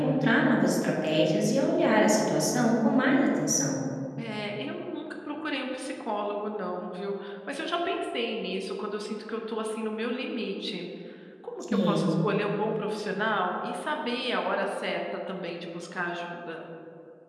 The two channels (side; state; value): both; identical; correlation 1.00